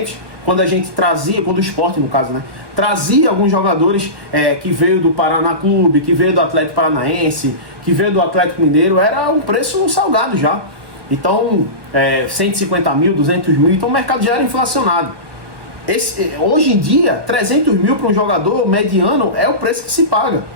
quando a gente trazia, quando o Sport no caso, né, trazia alguns jogadores que veio do Paraná Clube, que veio do Atlético Paranaense, que veio do Atlético Mineiro, era um preço salgado já. Então, 150 mil, 200 mil, então o mercado já era inflacionado. Hoje em dia, 300 mil para um jogador mediano é o preço que se paga,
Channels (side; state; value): left; late; 1.2 ms